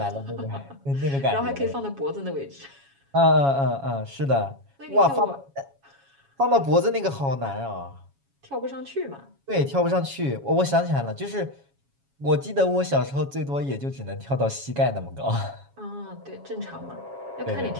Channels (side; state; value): left; late; 7.2 ms